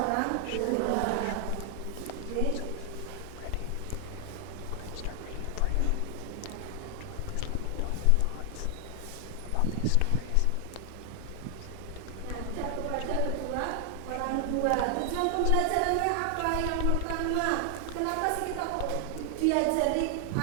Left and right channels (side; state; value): both; different; correlation 0.00